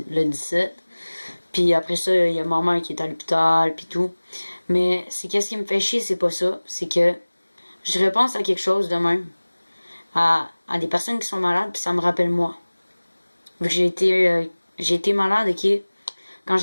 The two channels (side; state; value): both; inverted; correlation -1.00